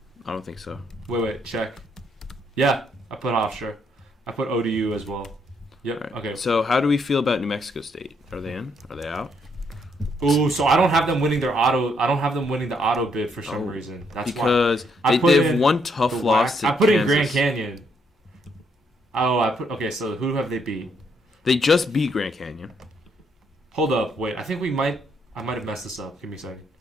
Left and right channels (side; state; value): both; normal; correlation 0.73